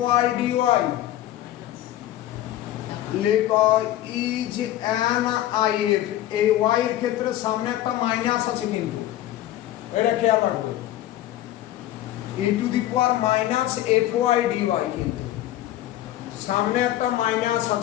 dy লেখো is an if এই y এর ক্ষেত্রে সামনে একটা মাইনাস আছে কিন্তু এটা খেয়াল রাখবে e to the power minus fy dy কিন্তু সামনে একটা মাইনাস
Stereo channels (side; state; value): right; quieter; 13.7 dB